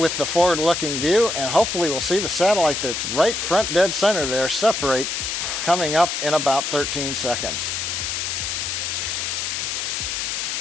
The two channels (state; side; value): noise; left; hiss, 2 dB below the sound